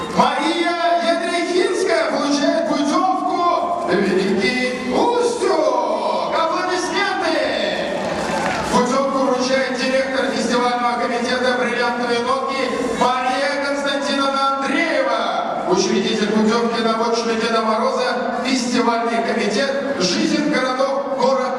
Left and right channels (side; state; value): both; identical; correlation 1.00